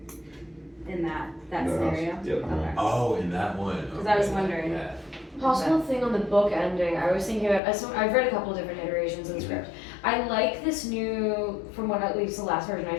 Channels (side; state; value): right; drops out; at 7.6 s